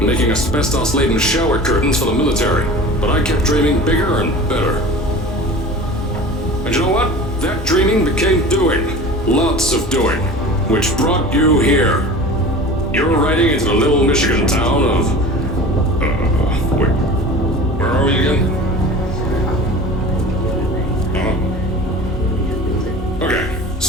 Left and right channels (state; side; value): normal; both; correlation 0.38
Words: making asbestos-laden shower curtains for the military, but I kept dreaming bigger and better. And you know what? That dreaming became doing. Lots of doing. Which brought you here. You're riding into the little Michigan town of... wait. Where are we again? Okay,